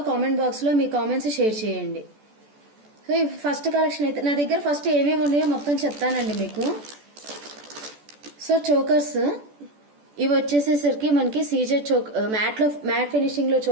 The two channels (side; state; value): left; late; 14 ms